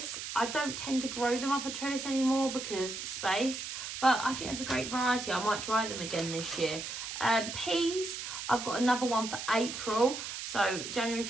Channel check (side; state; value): right; noise; hiss, 7 dB below the sound